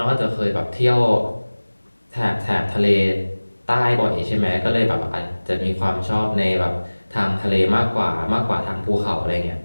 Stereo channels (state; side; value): inverted; both; correlation -1.00